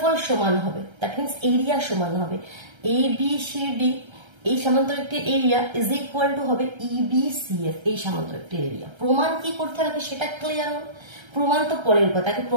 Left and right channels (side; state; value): left; late; 1.3 ms